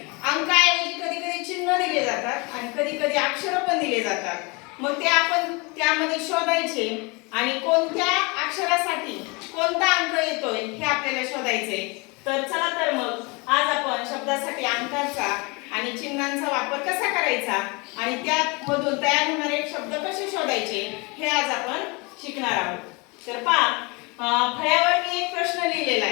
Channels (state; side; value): quieter; right; 28.2 dB